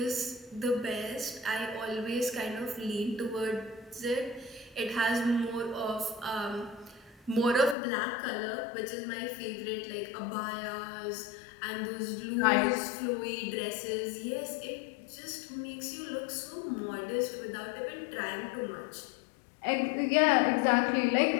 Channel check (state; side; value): drops out; right; at 7.8 s